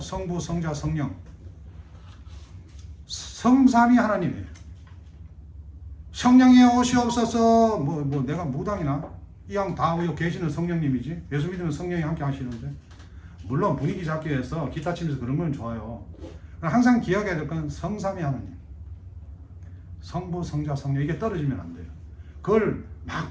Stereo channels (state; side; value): identical; both; correlation 1.00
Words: 성부, 성자, 성령. 성삼위 하나님이에요. 성령이 오시옵소서. 뭐 내가 무당이나 이왕 다 계시는 성령님이지. 예수 믿으면 성령이 함께 하시는데. 물론 분위기 잡기 위해서 기타 치면서 그런 건 좋아요. 항상 기억해야 될 건 성삼위 하나님. 성부, 성자, 성령 이게 떨어지면 안 돼요. 그걸 막